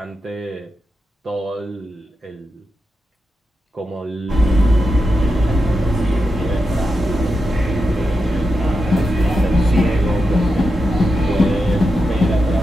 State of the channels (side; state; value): both; normal; correlation 0.88